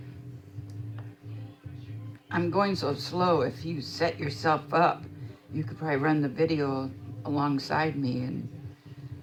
I'm going so slow. If you set yourself up, you could probably run the video alongside me and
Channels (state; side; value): identical; both; correlation 1.00